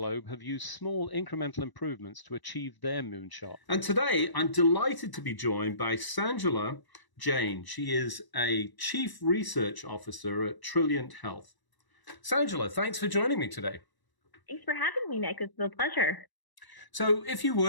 have used small incremental improvements to achieve their moonshot. And today I'm delighted to be joined by Sanjula Jain. She is a Chief Research Officer at Trilliant Health. Sanjula, thanks for joining me today. Thanks for having me, Nick. It's a pleasure. So if you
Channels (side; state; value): right; late; 1.0 ms